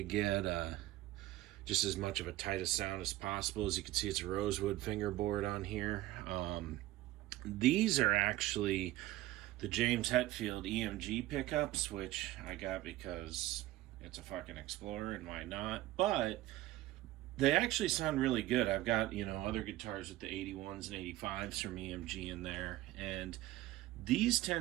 get just as much of a tightest sound as possible. As you can see, it's a rosewood fingerboard on here. These are actually the James Hetfield EMG pickups, which I got because it's a fucking Explorer, and why not? But they actually sound really good. I've got, other guitars with the 81s and 85s from EMG in there, and these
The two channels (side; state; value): left; quieter; 16.3 dB